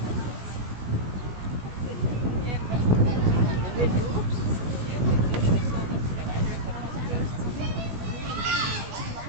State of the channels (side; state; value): left; late; 16 ms